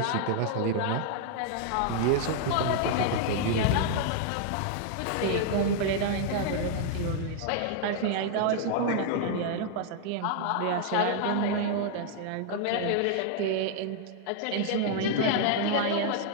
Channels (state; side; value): different; both; correlation -0.01